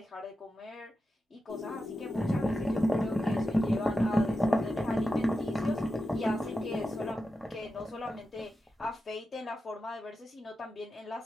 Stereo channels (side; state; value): both; normal; correlation 0.90